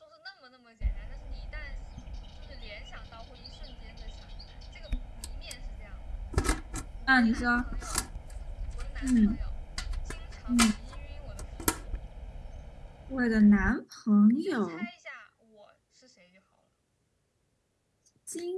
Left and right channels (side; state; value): both; identical; correlation 1.00